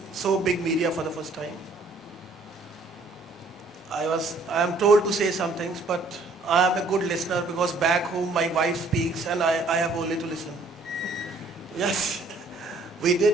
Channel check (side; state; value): left; quieter; 3.2 dB